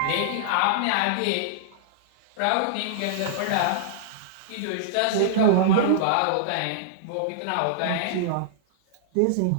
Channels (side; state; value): both; different; correlation -0.02